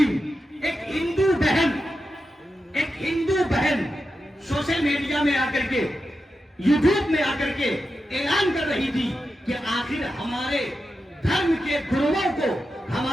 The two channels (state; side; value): normal; both; correlation 0.89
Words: ایک ہندو بہن سوشل میڈیا میں آ کر کے، یوٹیوب میں آ کر کے اعلان کر رہی تھی کہ آخر ہمارے دھرم کے گروؤں کو،